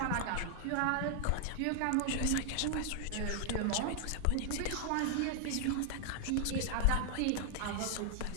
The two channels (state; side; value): different; both; correlation 0.00